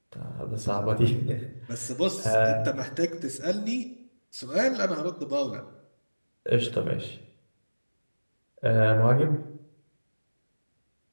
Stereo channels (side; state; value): both; inverted; correlation -1.00